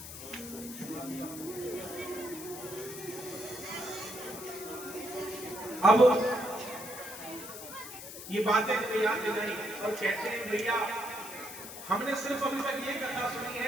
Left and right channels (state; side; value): noise; left; hiss, 11 dB below the sound